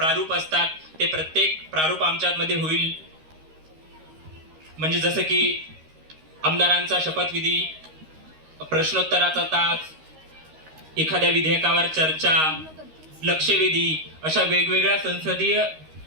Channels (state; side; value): late; left; 13 ms